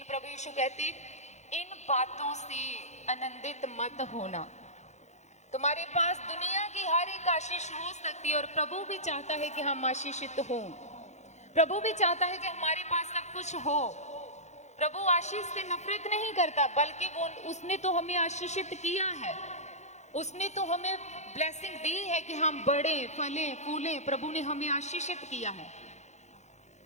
प्रभु यीशु कहते इन बातों से आनंदित मत होना। तुम्हारे पास दुनिया की हर एक आशीष हो सकती है और प्रभु भी चाहता है कि हम आशीषित हों। प्रभु भी चाहता है कि हमारे पास सब कुछ हो। प्रभु आशीष से नफरत नहीं करता, बल्कि उसने तो हमें आशीषित किया है। उसने तो हमें ब्लेसिंग दी है कि हम बढ़े, फलें, फूलें। प्रभु ने हमें आशीषित किया है।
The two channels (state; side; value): late; right; 0.33 ms